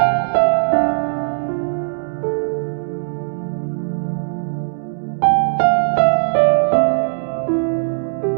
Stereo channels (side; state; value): left; silent; 67 dB below the other